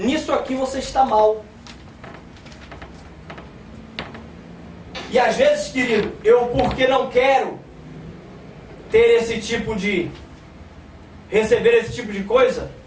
aqui você está mal. E às vezes, querido, eu porque não quero ter esse tipo de receber esse tipo de coisa,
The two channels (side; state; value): both; identical; correlation 1.00